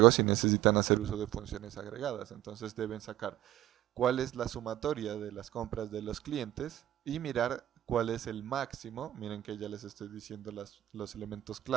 sí necesitan hacer uso de funciones agregadas. Entonces deben sacar cuál es la sumatoria de las compras de los clientes y mirar cuál es el máximo. Miren que ya les estoy diciendo los elementos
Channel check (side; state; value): left; quieter; 14.1 dB